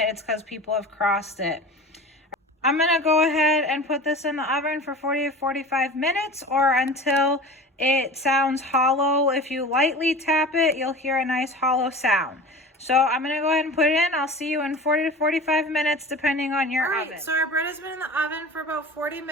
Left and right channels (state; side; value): normal; both; correlation 0.36